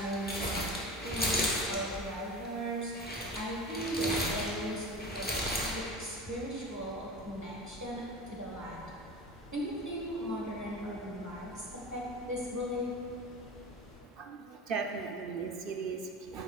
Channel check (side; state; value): both; normal; correlation 0.32